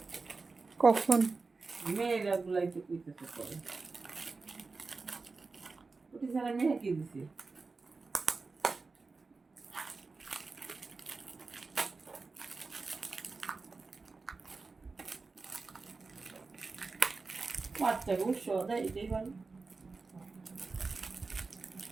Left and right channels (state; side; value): quieter; left; 4.1 dB